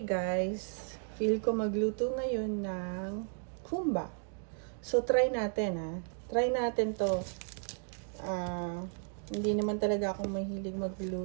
guys? Feel ko magluto ngayon ng kumba. So, try natin, ha? Try natin to. Hindi naman talaga ako mahilig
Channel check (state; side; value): silent; left; 55 dB below the other